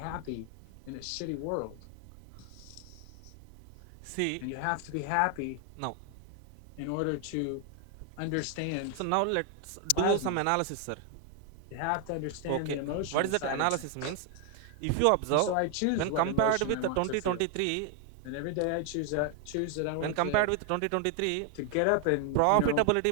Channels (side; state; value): both; different; correlation 0.00